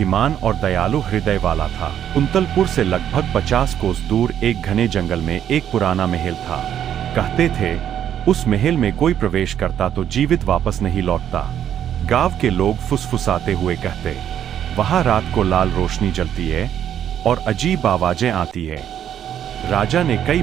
और दयालु हृदय वाला था। कुंतलपुर से लगभग 50 कोस दूर एक घने जंगल में एक पुराना महल था। कहते थे, उस महल में कोई प्रवेश करता तो जीवित वापस नहीं लौटता। गांव के लोग फुसफुसाते हुए कहते, वहां रात को लाल रोशनी जलती है और अजीब आवाजें आती है। राजा ने कई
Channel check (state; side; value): quieter; left; 10.0 dB